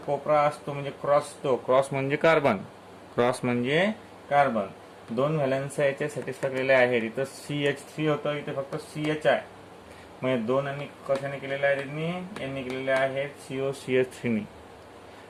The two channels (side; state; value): both; identical; correlation 1.00